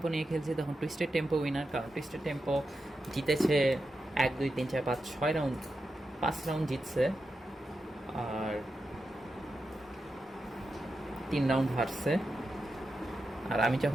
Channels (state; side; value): normal; both; correlation 0.89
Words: নিয়ে খেলছি তখন টুইস্টেড টেম্পো উইনার, কারণ টুইস্টেড টেম্পো জিতেছে 1 2 3 4 5 6 রাউন্ড, 5 রাউন্ড জিতছে আর 3 রাউন্ড হারছে। আর আমি